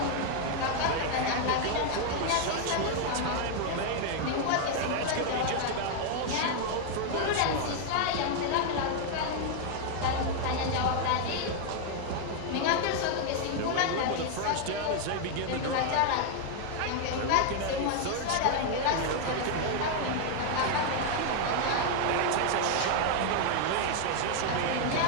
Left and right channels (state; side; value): different; both; correlation 0.00